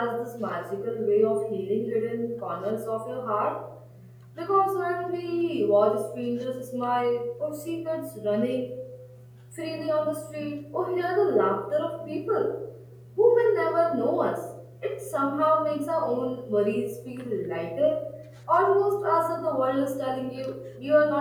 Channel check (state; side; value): identical; both; correlation 1.00